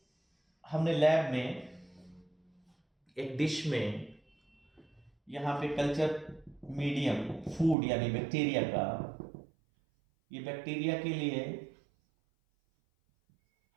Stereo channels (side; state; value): left; drops out; at 7.8 s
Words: हमने लैब में एक डिश में यहां पे कल्चर मीडियम फूड यानी बैक्टीरिया का, ये बैक्टीरिया के लिए